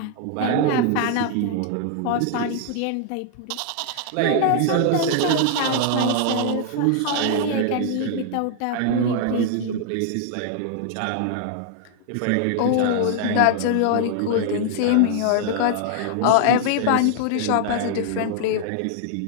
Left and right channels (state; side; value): different; both; correlation 0.00